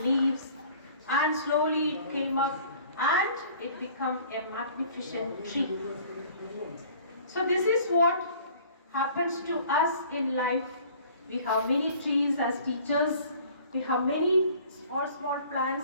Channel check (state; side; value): inverted; both; correlation -0.51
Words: and slowly it came up and it became a magnificent tree. So this is what happens to us in life. We have many trees as teachers. We have many small